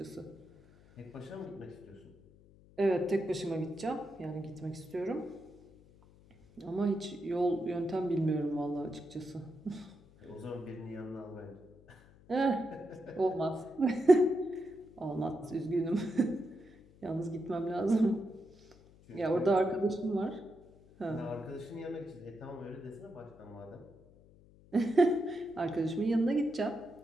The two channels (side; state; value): left; noise; hum, 25 dB below the sound